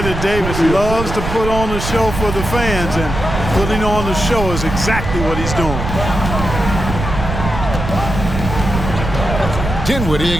that Davis loves to put on the show for the fans, and putting on the show is exactly what he's doing. Dinwiddie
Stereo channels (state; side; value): noise; right; rumble, 5 dB below the sound